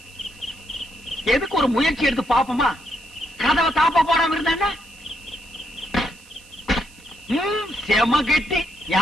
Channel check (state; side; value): noise; right; hiss, 24 dB below the sound